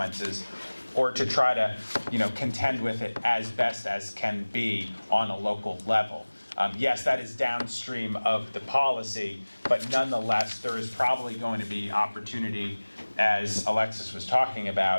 or to try to, contend with it as best as can be on a local level. Yes, that is downstream of the policy, but nonetheless, there is probably going to be opportunity, as Alexis was talking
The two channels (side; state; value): both; inverted; correlation -1.00